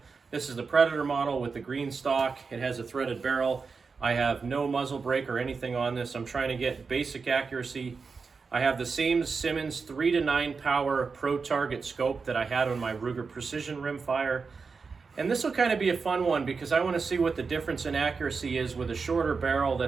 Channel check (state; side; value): quieter; left; 4.9 dB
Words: This is the Predator model with the green stock. It has a threaded barrel. I have no muzzle brake or anything on this. I'm trying to get basic accuracy. I have the same Simmons 3 to 9 power pro target scope that I had on my Ruger Precision Rimfire. And this will kind of be a fun one because I want to see what the difference in accuracy is with a shorter barrel